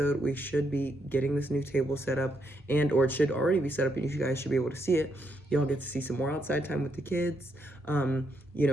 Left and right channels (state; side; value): normal; both; correlation 0.78